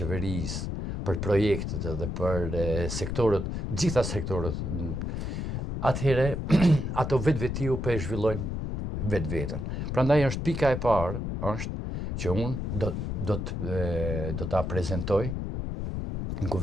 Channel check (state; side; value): noise; left; rumble, 3 dB below the sound